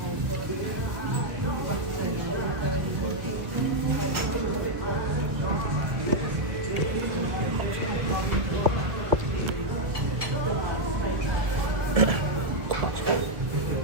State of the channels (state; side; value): late; left; 1.4 ms